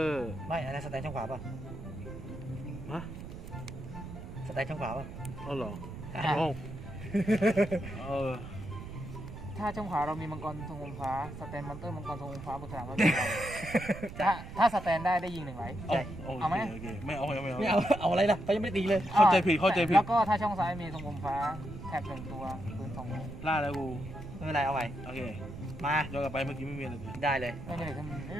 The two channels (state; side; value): noise; right; rumble, 11 dB below the sound